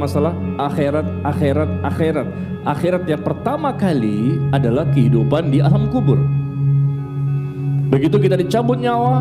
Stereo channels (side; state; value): both; identical; correlation 1.00